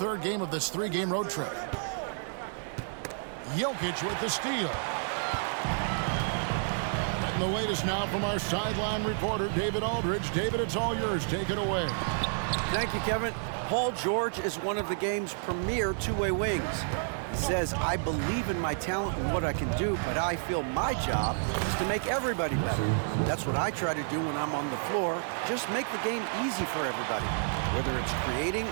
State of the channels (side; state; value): left; silent; digital silence